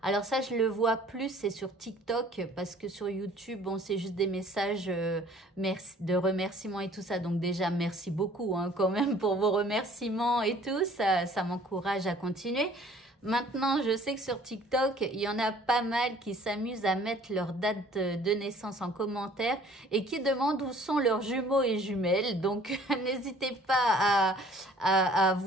Alors ça, je le vois plus, c'est sur TikTok parce que sur YouTube, bon, c'est juste des messages merci, de remerciements et tout ça. Donc déjà, merci beaucoup quand même pour vos remerciements et tout. Ça m'encourage à continuer. Maintenant, je sais que sur TikTok, il y en a pas mal qui s'amusent à mettre leur date de naissance en commentaire et qui demandent où sont leurs jumeaux et jumelles. Donc, n'hésitez pas à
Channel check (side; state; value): both; normal; correlation 0.54